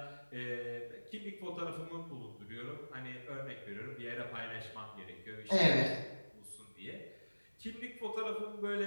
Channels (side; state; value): both; inverted; correlation -1.00